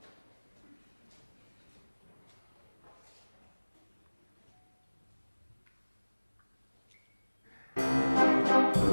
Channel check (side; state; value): both; inverted; correlation -1.00